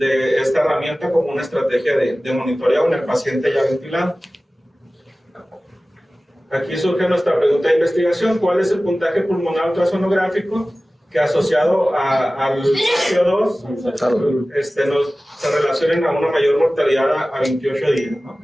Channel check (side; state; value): both; normal; correlation 0.97